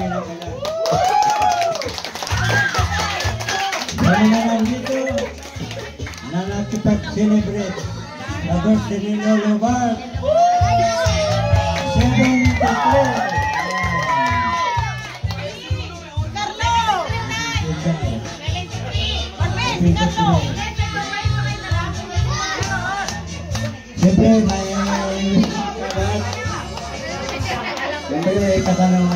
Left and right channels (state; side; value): identical; both; correlation 1.00